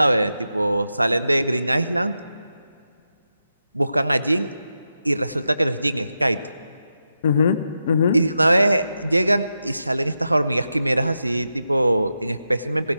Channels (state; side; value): inverted; both; correlation -0.88